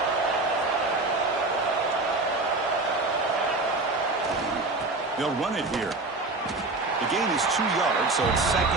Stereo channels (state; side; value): quieter; left; 3.2 dB